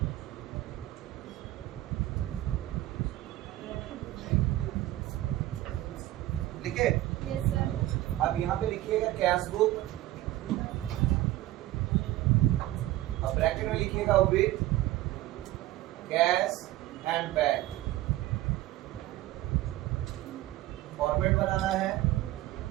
ठीक है, yes sir. अब यहाँ पे लिखिएगा कैश बुक, अब ब्रैकेट में लिखिएगा with cash and bank. Format बनाना है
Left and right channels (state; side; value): quieter; left; 15.8 dB